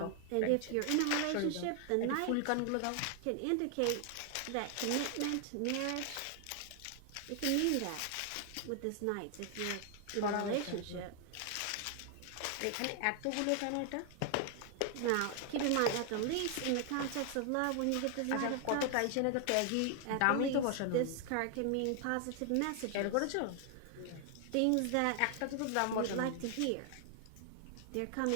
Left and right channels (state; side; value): different; both; correlation 0.00